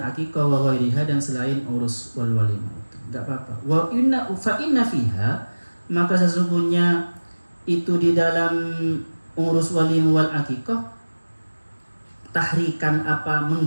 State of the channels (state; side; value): inverted; both; correlation -1.00